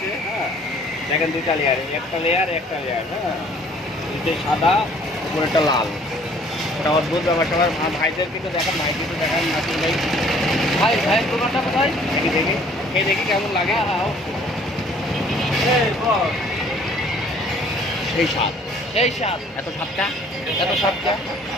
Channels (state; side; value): normal; both; correlation 0.57